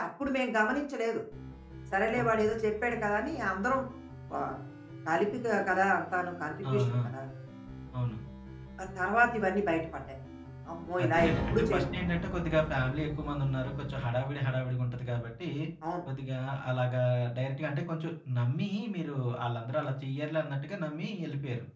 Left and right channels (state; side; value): identical; both; correlation 1.00